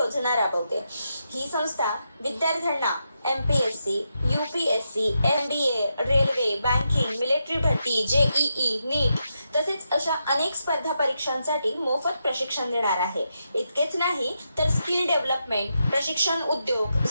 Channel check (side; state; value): both; inverted; correlation -0.84